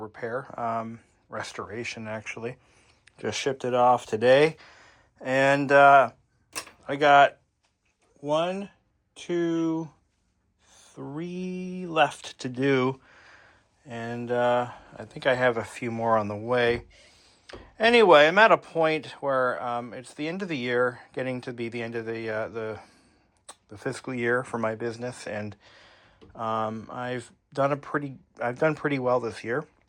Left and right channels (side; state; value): both; identical; correlation 1.00